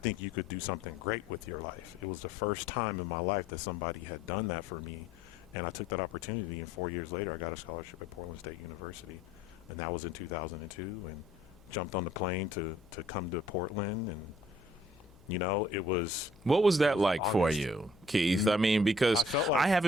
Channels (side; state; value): left; noise; hum, 25 dB below the sound